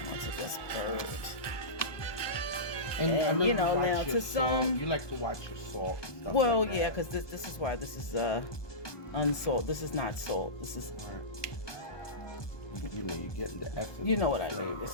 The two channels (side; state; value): right; late; 1.2 ms